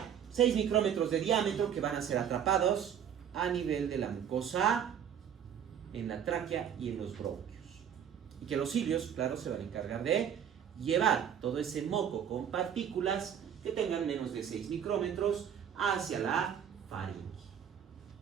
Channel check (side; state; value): left; quieter; 8.7 dB